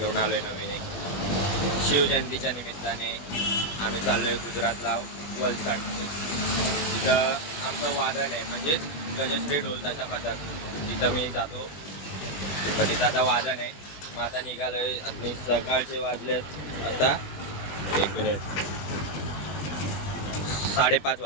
आलोय नवीन एक. शिवजयंतीच्या निमित्ताने आम्ही चाललोय गुजरातला वलसाड. तिथं आमचं वादन आहे, म्हणजेच गजश्री ढोलताचा पथक. तिथं मी जातो, मग तिथं आता वादन आहे. मग आता निघालोय. आणि सकाळचे वाजलेत आता 5:30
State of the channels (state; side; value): late; right; 20 ms